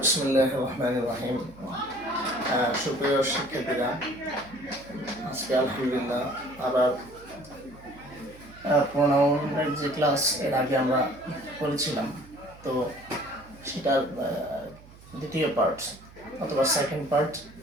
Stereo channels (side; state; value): right; noise; hum, 22 dB below the sound